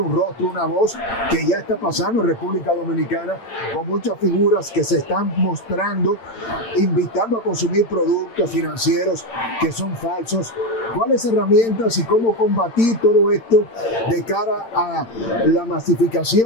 rostro, una voz, que ya está pasando en República Dominicana, con muchas figuras que se están mostrando, invitando a consumir productos financieros que son falsos? ¿Cuáles herramientas y cómo combatir todo esto de cara a la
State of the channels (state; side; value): late; right; 8.8 ms